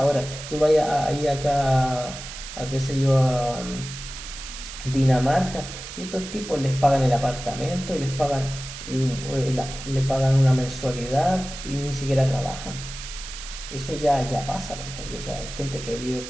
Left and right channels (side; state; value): right; noise; hiss, 11 dB below the sound